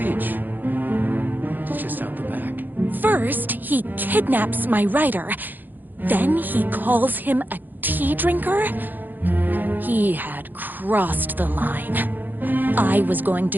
It's just out the back. First, he kidnaps my rider. Then he calls him a tea drinker. He had crossed the line. I was going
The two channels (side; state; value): left; late; 0.087 ms